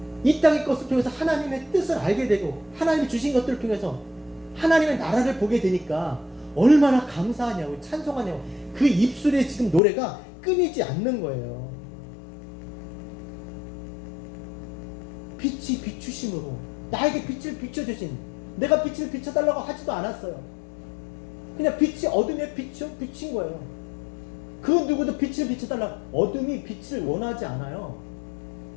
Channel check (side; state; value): right; drops out; at 9.8 s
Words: 이 땅의 것을 통해서 하나님의 뜻을 알게 되고 하나님이 주신 것들을 통해서 하나님의 나라를 보게 되니까 얼마나 감사하냐고 찬송하냐고 그 입술에 지금 노래가 끊이지 않는 거예요. 빛이 비추심으로 나에게 빛을 비춰주신, 내가 빛을 비춰달라고 하지도 않았어요. 그냥 빛이 어둠에 비친 거예요. 그 누구도 빛을 비춰달라고, 어둠이 빛을 원하지 않아요.